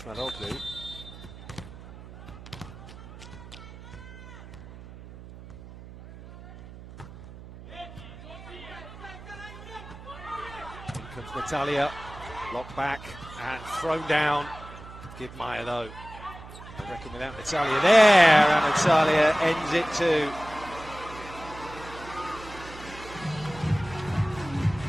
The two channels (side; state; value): right; noise; hum, 15 dB below the sound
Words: Natalia, locked back and thrown down. Give Maya though. I reckon without Natalia there, and Natalia ends it too.